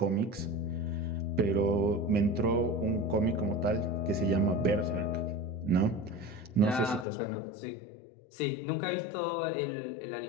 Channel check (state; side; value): drops out; right; at 7.1 s